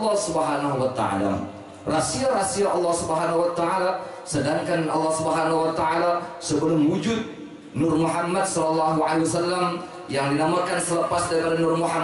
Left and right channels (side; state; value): both; identical; correlation 1.00